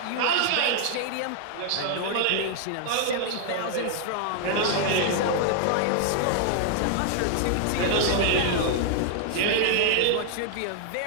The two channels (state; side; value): different; both; correlation 0.00